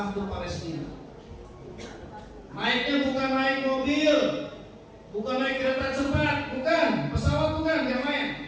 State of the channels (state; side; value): identical; both; correlation 1.00